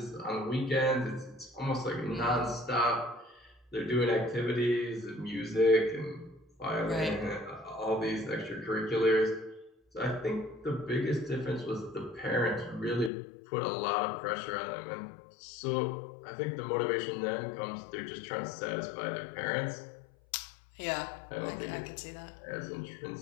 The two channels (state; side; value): drops out; right; at 13.1 s